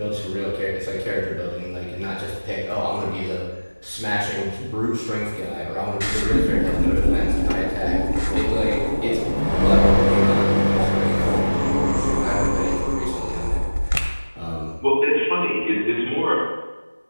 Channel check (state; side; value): inverted; both; correlation -1.00